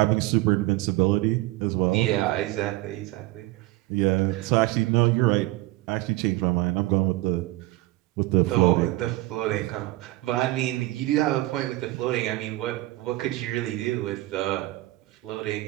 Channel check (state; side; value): quieter; left; 18.7 dB